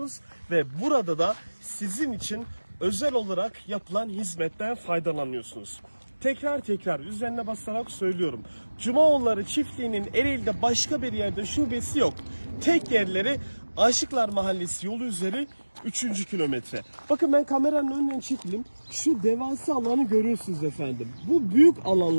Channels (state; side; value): inverted; both; correlation -1.00